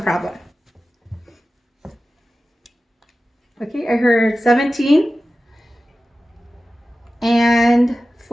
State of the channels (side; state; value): both; normal; correlation 0.95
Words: problem. Okay, I heard 17 and